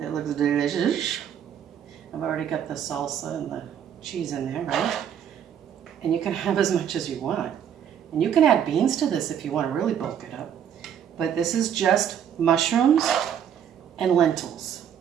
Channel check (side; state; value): left; quieter; 9.0 dB